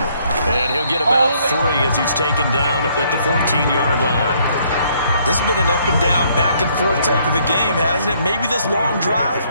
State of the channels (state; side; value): inverted; both; correlation -0.67